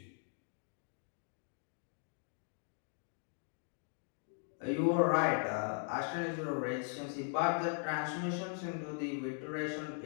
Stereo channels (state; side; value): silent; right; 52 dB below the other